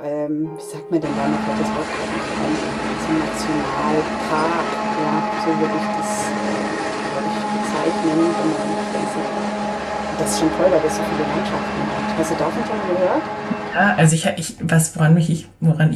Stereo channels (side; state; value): both; identical; correlation 1.00